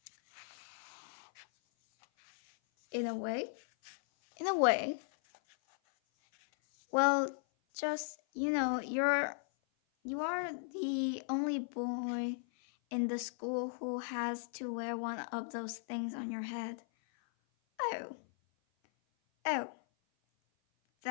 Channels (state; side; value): silent; right; 53 dB below the other